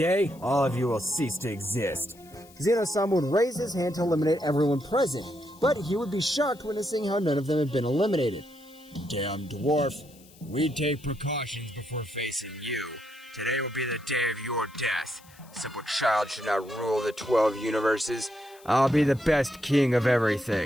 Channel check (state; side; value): noise; left; hiss, 25 dB below the sound